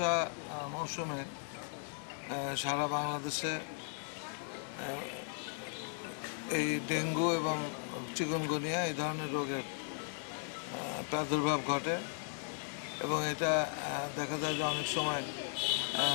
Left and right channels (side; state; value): right; silent; 53 dB below the other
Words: মৌসুমে সারা বাংলাদেশে এই ডেঙ্গু এবং চিকুনগুনিয়া এই ধরনের রোগের প্রাদুর্ভাব ঘটে এবং এটা দেখা যায় যে অনেক সময়